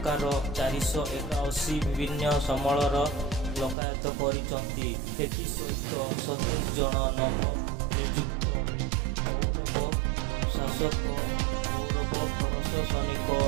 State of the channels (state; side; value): drops out; left; at 3.8 s